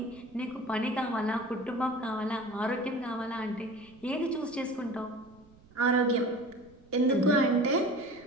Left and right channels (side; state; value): right; noise; rumble, 26 dB below the sound